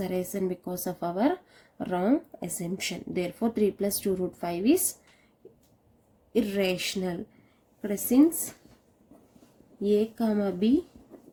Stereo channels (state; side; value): identical; both; correlation 1.00